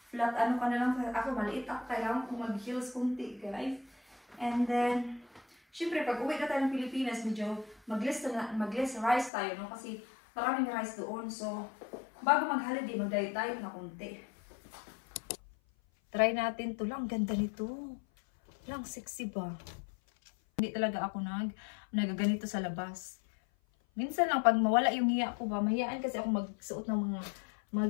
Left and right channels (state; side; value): drops out; right; at 9.3 s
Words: ano ka na lang. Ako, maliit ako. Kailangan kong mag-heels kunti, guys. And then, syempre, pag uwi na tayo ng Pilipinas, medyo mag-less rice tayo, no? Kasi maraming rice doon. So, bago mag-holiday, mag-diet-diet na kunti. Try natin to lang. Ganda nito. Lang, sexy ba? Hindi talaga ako nagaganito sa labas. Minsan lang, pag mawala yung hiya ko ba, mahiyaan kasi ako magsuot ng mga